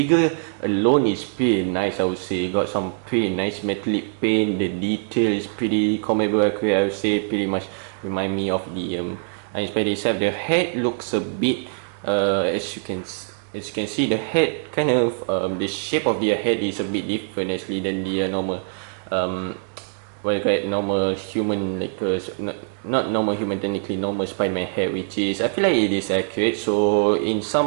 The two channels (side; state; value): left; silent; digital silence